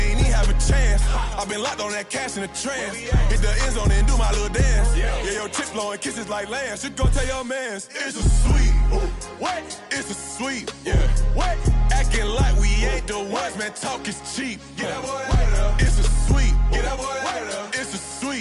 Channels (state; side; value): identical; both; correlation 1.00